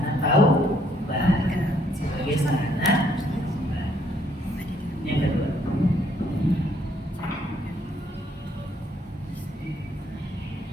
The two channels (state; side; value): normal; both; correlation 0.68